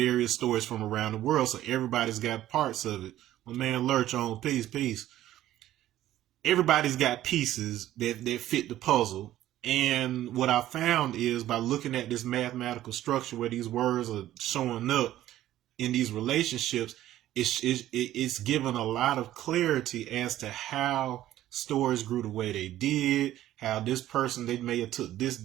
stories from around the world. So everybody's got parts of it. My man Lurch on peace. Everybody's got pieces that fit the puzzle. And what I found is, by looking at this mathematical structure where these words are showing up in these relationships, it's given a lot of clarity as to how stories grew the way they did, how this person, they may have took this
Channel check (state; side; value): quieter; left; 13.6 dB